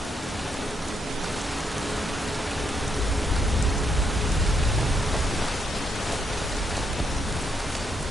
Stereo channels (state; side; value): normal; both; correlation 0.78